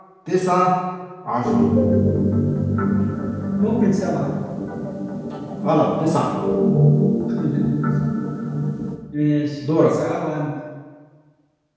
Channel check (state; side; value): identical; both; correlation 1.00